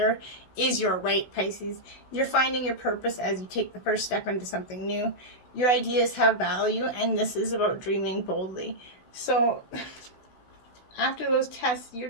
is your right, Pisces. You're finding your purpose as you take the first step into something new. Your ideas have value, and this is about dreaming boldly. So after those tests,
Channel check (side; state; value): right; late; 16 ms